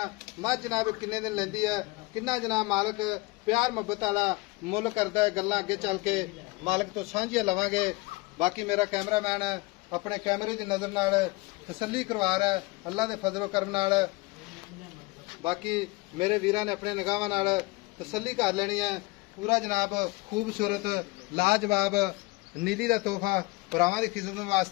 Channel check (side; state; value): right; quieter; 23.7 dB